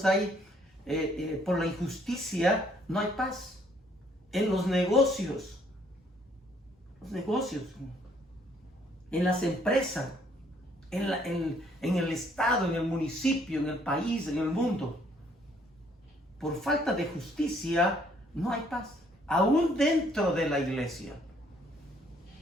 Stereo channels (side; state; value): both; normal; correlation 0.65